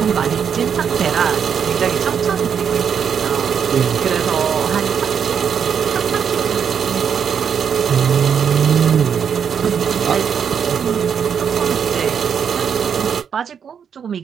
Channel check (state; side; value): quieter; left; 7.4 dB